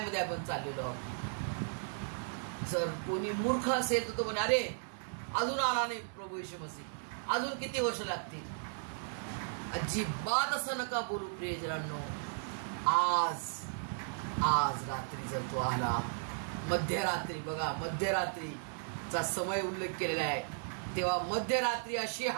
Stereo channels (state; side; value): silent; left; 54 dB below the other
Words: आपण चाललेलो आहोत. जर कोणी मूर्ख असेल तर तो म्हणे अरे अजून आला नाही प्रभू येशू मसीह, अजून किती वर्ष लागतील. अजिबात असं नका बोलू प्रियजनांनो. आज रात्री जर तो आला, मध्यरात्री, बघा मध्यरात्रीचा समय उल्लेख केलेला आहे, तेव्हा मध्यरात्री अशी